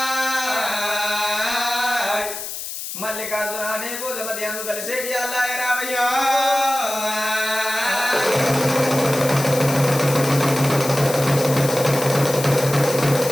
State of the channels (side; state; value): left; noise; hiss, 7 dB below the sound